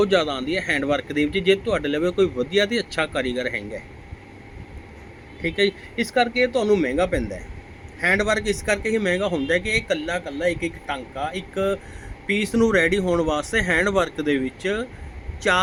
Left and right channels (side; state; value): both; identical; correlation 1.00